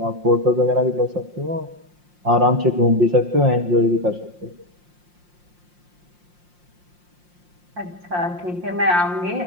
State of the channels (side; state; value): left; late; 5.7 ms